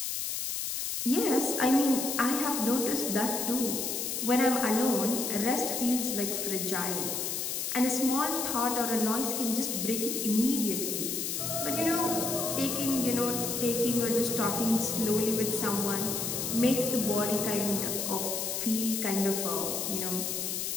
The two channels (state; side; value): noise; left; hiss, 2 dB below the sound